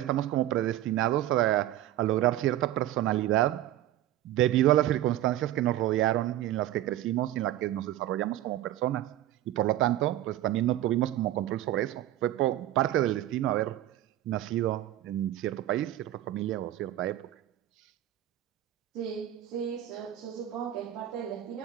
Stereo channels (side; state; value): left; quieter; 13.6 dB